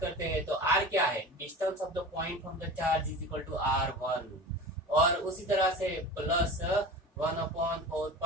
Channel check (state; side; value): normal; both; correlation 0.34